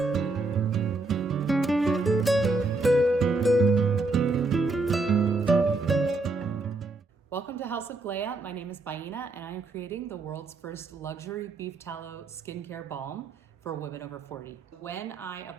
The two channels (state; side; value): quieter; left; 3.4 dB